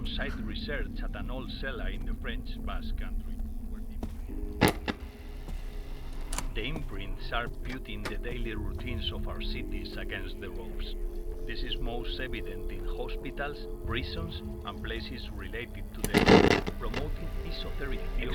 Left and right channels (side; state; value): both; identical; correlation 1.00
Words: research at an old cellar in the French Basque Country. The imprints are putting the daily routines of our cities against the ropes. This is most evident in hospitals, prisons, and places related to them. Promoting esoteric